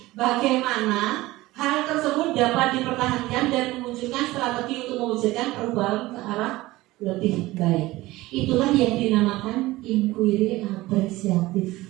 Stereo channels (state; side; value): quieter; left; 18.6 dB